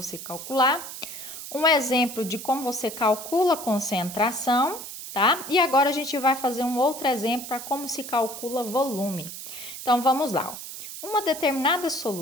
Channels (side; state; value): right; noise; hiss, 10 dB below the sound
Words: calcular, um exemplo de como você calcula a concentração, tá? E agora a gente vai fazer um outro exemplo para como se calcula volume. Então, vamos lá. Uma determinada